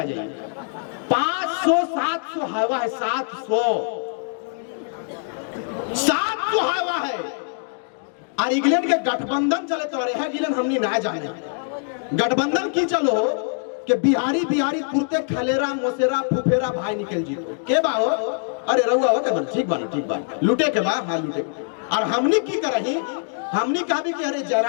जाइए। 500-700 हवा है, 700 हवा है। और इंग्लैंड के गठबंधन चले तो अरे गिलन हमनी ना जाने गठबंधन की चलो कि बिहारी कुर्ते खलेरा मोसेरा फुफेरा भाई निकल जी के बा हो, अरे रहुआ हो के ठीक बा लूटे के बा, हाँ लूटे। और हमनी की करही, हमनी कहा भी कि अरे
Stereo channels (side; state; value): right; silent; digital silence